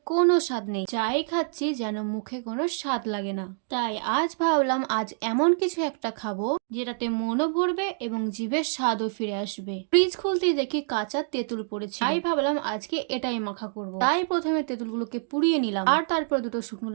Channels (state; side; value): silent; left; digital silence